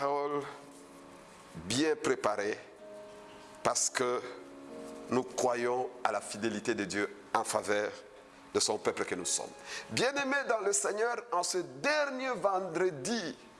bien préparées parce que nous croyons à la fidélité de Dieu en faveur de son peuple que nous sommes. Bien-aimés dans le Seigneur, en ce dernier vendredi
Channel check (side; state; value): both; identical; correlation 1.00